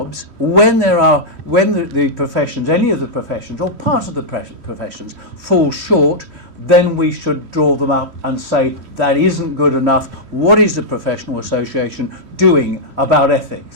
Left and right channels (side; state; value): left; late; 3.0 ms